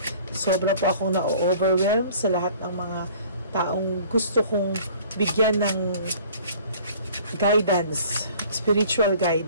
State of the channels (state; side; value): inverted; both; correlation -0.50